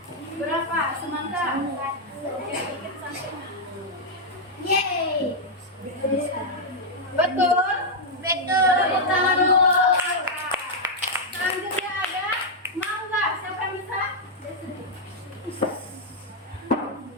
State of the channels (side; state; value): both; normal; correlation -0.03